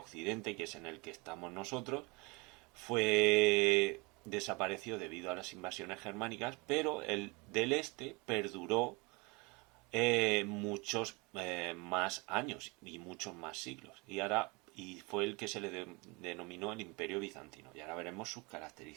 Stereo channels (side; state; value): left; quieter; 27.8 dB